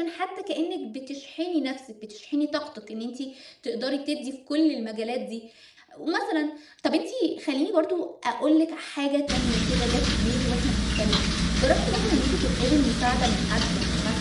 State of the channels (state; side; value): identical; both; correlation 1.00